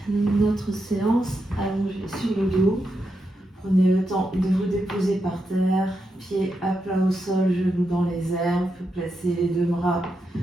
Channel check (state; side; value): normal; both; correlation 0.85